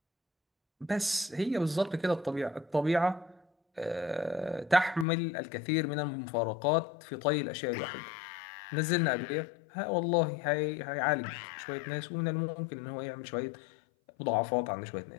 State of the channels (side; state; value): right; drops out; at 5.1 s